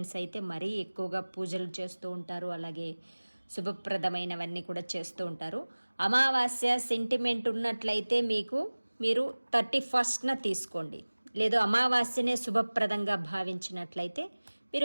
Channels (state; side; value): inverted; both; correlation -1.00